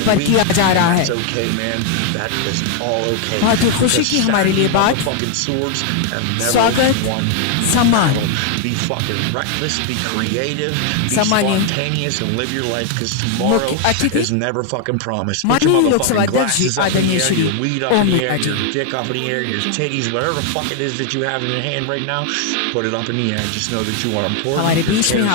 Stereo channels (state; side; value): different; both; correlation 0.00